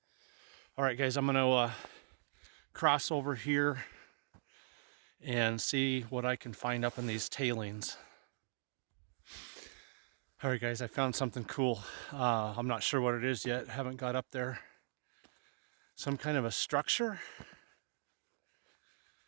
guys, I'm gonna cross over here and see what I can find up in these tailings. All right, guys, I found something cool. I'm not sure what it is yet. Haven't got up there. Some kind of a structure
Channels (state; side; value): silent; left; digital silence